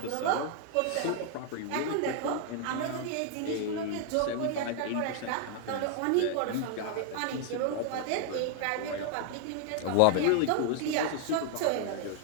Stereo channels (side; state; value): both; different; correlation 0.00